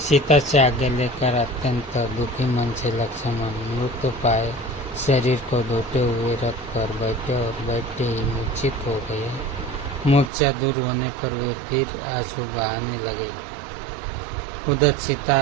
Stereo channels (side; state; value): left; drops out; at 10.3 s